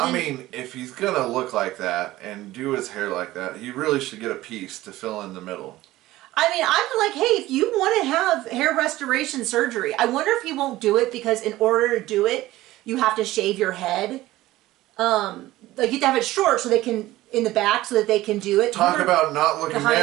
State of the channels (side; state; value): left; quieter; 16.7 dB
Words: I mean, if he's going to look like that and do his hair like that, he really should get a piece to fill in the middle. I mean, I'm like, hey, if you want to have hair restoration surgery, I wonder if he won't do it because in order to do it, you have to shave your head. Like you have to have it short so they can, in the back, so that they can do it. Talk about not looking